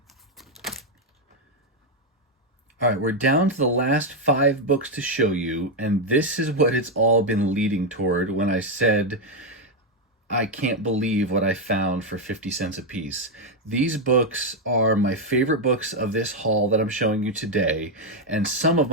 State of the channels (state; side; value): normal; both; correlation 0.03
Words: All right, we're down to the last 5 books to show you, and this is what it's all been leading toward when I said I can't believe what I found for 50 cents a piece. These books are my favorite books of this haul that I'm showing you today, and some of